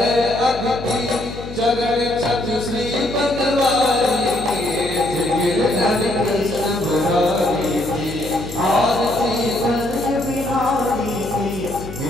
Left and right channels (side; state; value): left; noise; hum, 11 dB below the sound